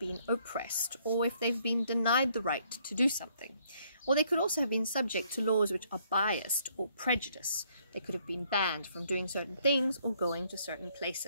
oppressed or if they've been denied the right to do something. Or they could also have been subject to laws which are biased or prejudiced. They could have been banned from doing certain things or going to certain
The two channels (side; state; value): both; inverted; correlation -0.68